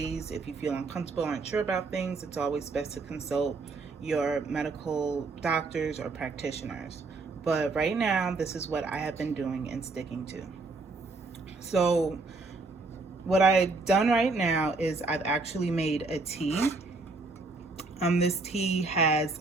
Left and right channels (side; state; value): left; quieter; 3.7 dB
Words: if you feel uncomfortable or unsure about things, it's always best to consult your medical doctors or practitioners. But right now, this is what I have been doing and sticking to. So what I've done right now is I've actually made a tea. This tea has